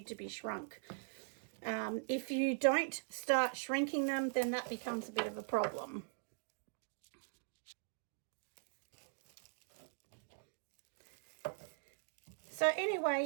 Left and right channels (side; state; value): left; silent; digital silence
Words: to be shrunk. If you don't start shrinking them, then that becomes a bit of a problem. So